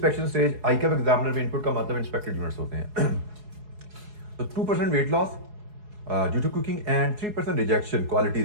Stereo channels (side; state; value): left; late; 4.7 ms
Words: stage ICAP examiner में इनपुट का मतलब इंस्पेक्टेड यूनिट्स होते हैं। तो 2% weight loss due to cooking and 3% rejection, quality